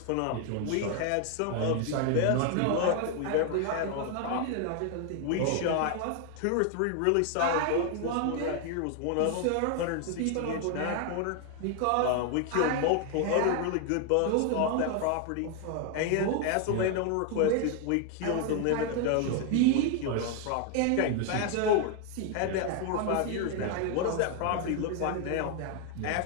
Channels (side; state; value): both; different; correlation 0.00